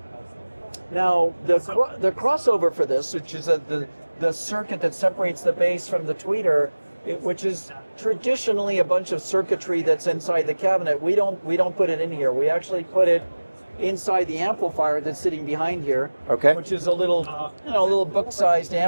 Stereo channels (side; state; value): both; inverted; correlation -1.00